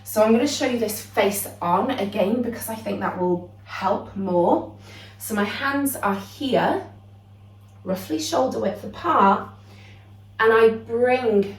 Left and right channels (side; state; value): both; identical; correlation 1.00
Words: So I'm going to show you this face on again because I think that will help more. So my hands are here, roughly shoulder width apart, and I bring